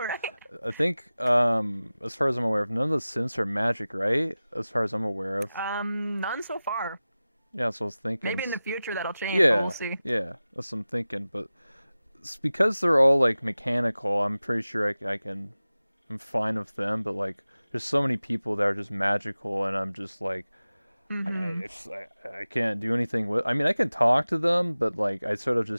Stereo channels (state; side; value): inverted; both; correlation -0.96